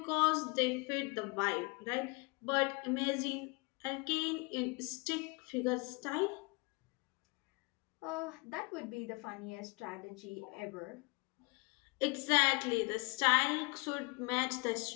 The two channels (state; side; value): quieter; right; 28.7 dB